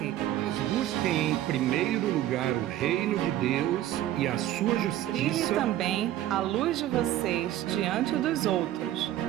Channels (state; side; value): quieter; left; 13.1 dB